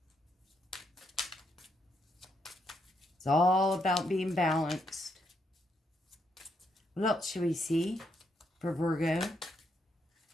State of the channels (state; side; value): normal; both; correlation 0.77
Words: It's all about being balanced. What else should we see for Virgo?